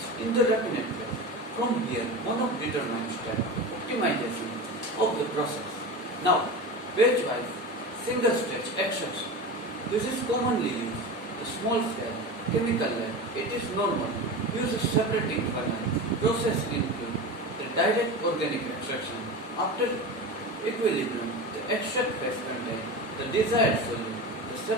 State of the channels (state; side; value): normal; both; correlation 0.27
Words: in the raffinate phase. From here, one of determined step optimization of the process. Now, batch-wise single stage extraction. This is commonly used. The small scale chemical lab. It is normal. Use a separating funnel. Process include the direct organic extraction. After equilibrium, the extract phase contains the desired solute. The